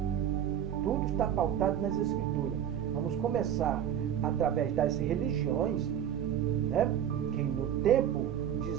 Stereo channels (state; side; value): quieter; left; 9.8 dB